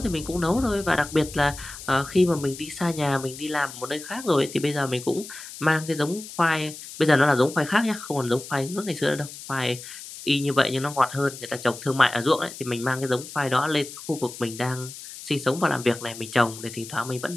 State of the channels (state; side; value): noise; left; hiss, 13 dB below the sound